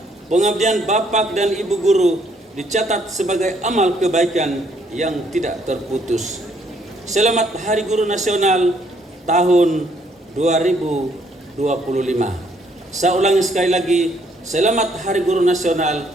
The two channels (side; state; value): both; normal; correlation 0.68